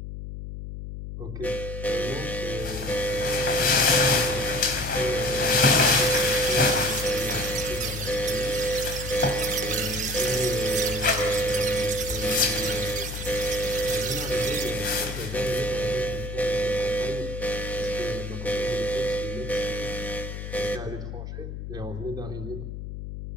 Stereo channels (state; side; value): noise; left; hum, 8 dB below the sound